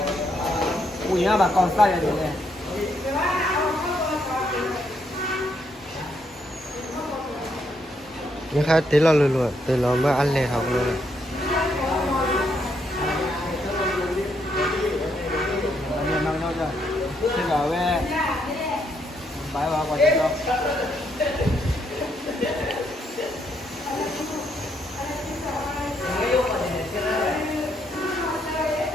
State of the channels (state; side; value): normal; both; correlation 0.75